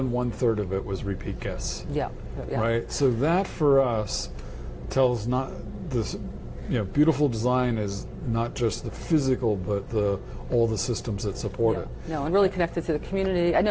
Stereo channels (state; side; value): identical; both; correlation 1.00